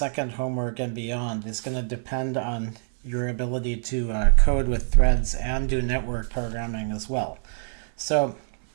homework and beyond, is going to depend on your ability to code with threads and do network programming as well. So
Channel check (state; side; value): silent; left; 62 dB below the other